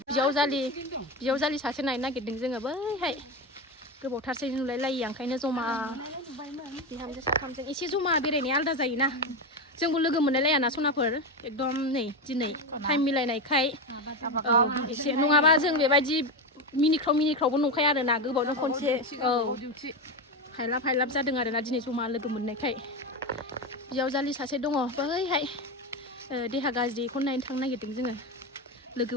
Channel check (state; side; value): normal; both; correlation 0.15